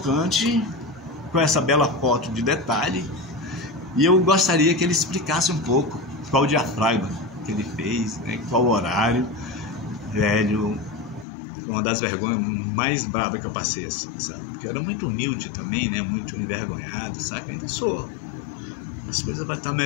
com essa bela foto de detalhe e eu gostaria que ele explicasse um pouco qual o diafragma que ele fez, né, qual o horário. Velho, uma das vergonhas mais bravas que eu passei, assim, sabe? Porque eu era muito humilde também, né? Muito envergonhado, sabe? Ainda sou. As coisas vão estar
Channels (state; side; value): drops out; right; at 11.2 s